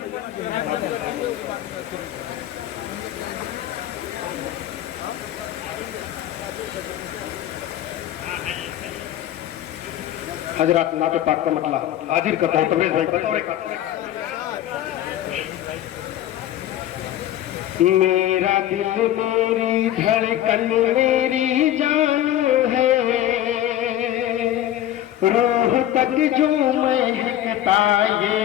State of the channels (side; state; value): right; quieter; 12.5 dB